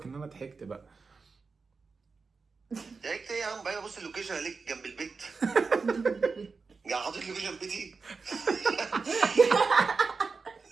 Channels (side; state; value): left; quieter; 4.6 dB